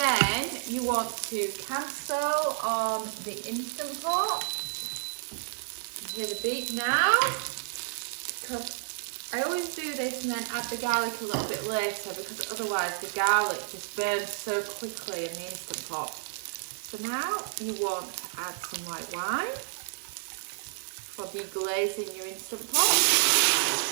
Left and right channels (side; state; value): left; silent; digital silence